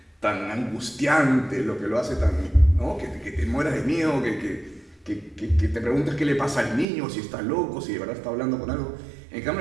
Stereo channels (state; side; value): drops out; left; at 6.9 s